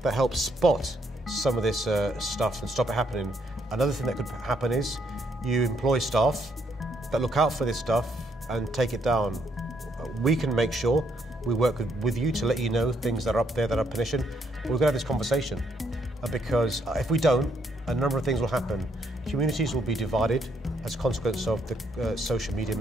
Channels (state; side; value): normal; both; correlation 0.72